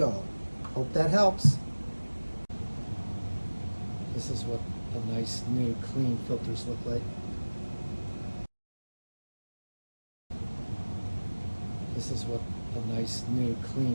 Hope that helps. This is what the nice new clean filters look like. This is what the nice new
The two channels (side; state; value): both; inverted; correlation -1.00